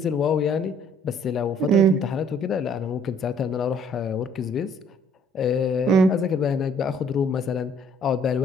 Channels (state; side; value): normal; both; correlation 0.60